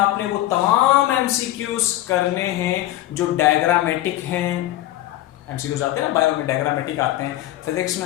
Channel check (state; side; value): quieter; right; 14.9 dB